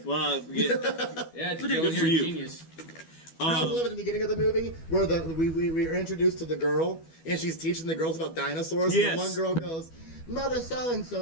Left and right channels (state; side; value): late; right; 12 ms